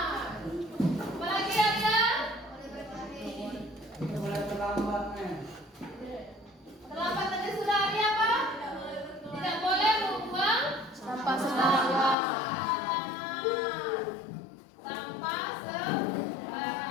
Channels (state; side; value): drops out; right; at 12.2 s